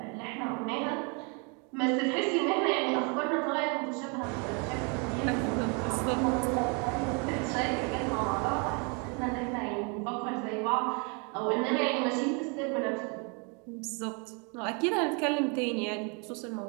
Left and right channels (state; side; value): quieter; left; 34.5 dB